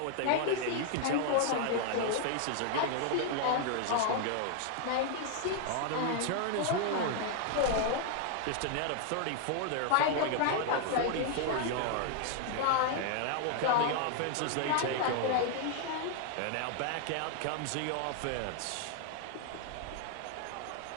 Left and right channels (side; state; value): both; different; correlation 0.00